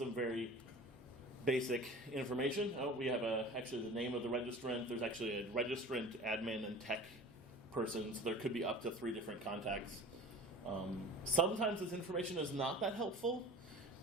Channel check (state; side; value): normal; both; correlation 0.40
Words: very basic information. We have actually the name of the registrant. There's actually a registrant, admin, and tech person, so there could be up to 3 different contacts. Sometimes this information is not that helpful,